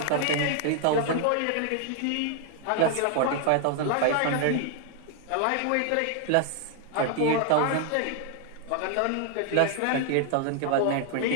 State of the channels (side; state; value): both; different; correlation 0.00